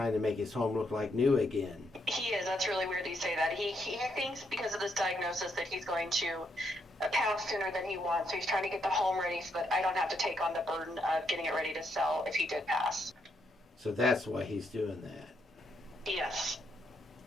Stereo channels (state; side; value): normal; both; correlation 0.77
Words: to make his home look like new again. He is. That's really weird that you say that. He thinks because of this diagnosis that he's going to pass sooner than he wants. So he's trying to get the home ready so that I don't have to take on the burden of getting it ready to sell if he did pass. So that's why he's doing that. Yes.